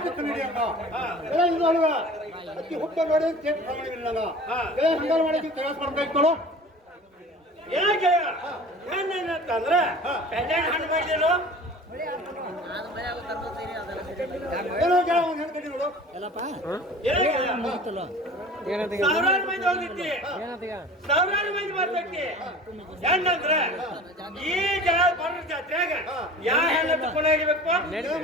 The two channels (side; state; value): both; normal; correlation 0.41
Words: ಕನ್ನಡಿ ಹಂಗ ಹಾ. ಗೆಳೆಯ ಇದು ಅಲ್ವ ಅಕ್ಕಿ ಹುಟ್ಟ ನೋಡಿ ಕೇಕ್ ಕನ್ನಡಿ ನಂಗ ಹಾ. ಗೆಳೆಯ ಹಂಗಾರ ಮಾಡಿ ತಯಾರು ಮಾಡ್ಬೇಕು ಏನಾಗೆ ಹೆಣ್ಣಂತಂದ್ರ ಕಲ್ಯಾಣ ಹಣ್ಣು ಮಾಡಿದೇನು ಏನೋ ಗೆಳೆಯ ಒಂದು ಹೆಣ್ಣು ಕಟ್ಟಿ ನೋಡು ಸಾವಿರಾರು ಮಂದಿ ಹೋಗಿದ್ದಿ ಸಾವಿರಾರು ಮಂದಿ ಬರ್ತೈತಿ ಹೆಣ್ಣಂದ್ರ ಈ ಜನ ಬರೋ ಜಾತ್ರೆಯಾಗ ಯಾವ ಹೆಣ್ಣ ತಗೊಂಡು ಹೋಗಿಬೇಕು ಗೆಳೆಯ